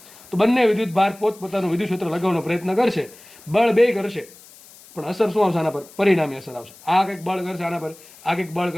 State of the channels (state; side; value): noise; left; hiss, 22 dB below the sound